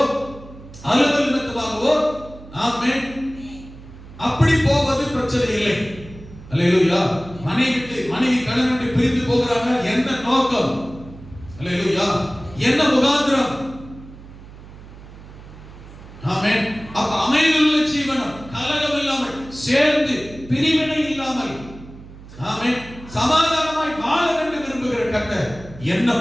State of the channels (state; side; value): noise; right; hum, 17 dB below the sound